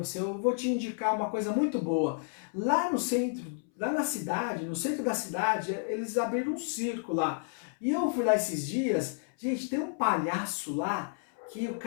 eu vou te indicar uma coisa muito boa. Lá no centro, lá na cidade, no centro da cidade, eles abriram um circo lá. E eu fui lá esses dias, gente, tem um palhaço lá, que o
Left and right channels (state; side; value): silent; right; 57 dB below the other